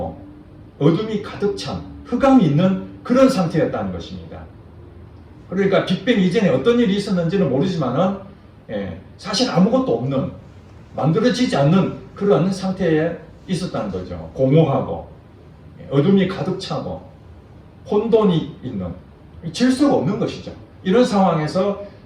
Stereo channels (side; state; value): both; identical; correlation 1.00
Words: 어둠이 가득 찬 흑암이 있는 그런 상태였다는 것입니다. 그러니까 빅뱅 이전에 어떤 일이 있었는지는 모르지만은 사실 아무것도 없는, 만들어지지 않는 그런 상태에 있었다는 거죠. 공허하고 어둠이 가득 차고 혼돈이 있는, 질서가 없는 것이죠. 이런 상황에서